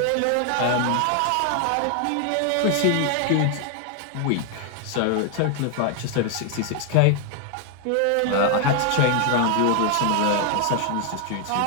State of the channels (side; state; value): both; different; correlation 0.00